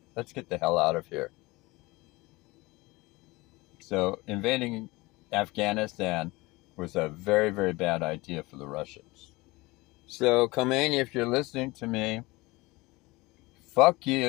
let's get the hell out of here. So invading Afghanistan was a very, very bad idea for the Russians. So, Khomeini, if you're listening to me, fuck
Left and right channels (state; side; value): quieter; right; 22.3 dB